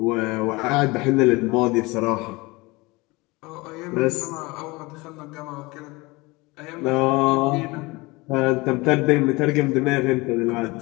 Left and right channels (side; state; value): right; quieter; 23.5 dB